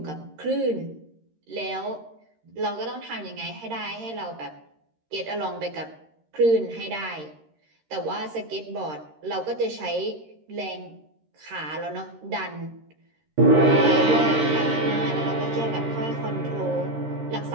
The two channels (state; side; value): late; left; 13 ms